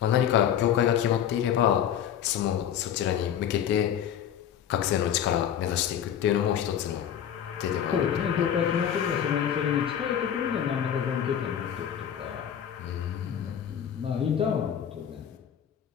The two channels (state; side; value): quieter; right; 9.4 dB